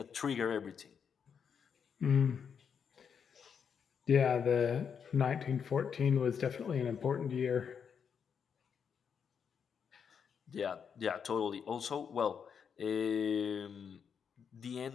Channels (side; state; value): right; quieter; 7.0 dB